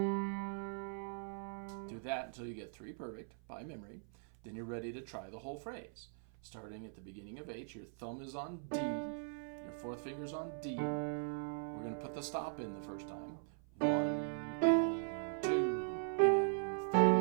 Do that until you get 3 perfect by memory. Then you're ready to try the whole phrase. Starting at the beginning of H, your thumb is on D, your fourth finger's on D. We're going to put the stop in the first time. 1 and 2 and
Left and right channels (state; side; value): silent; left; 51 dB below the other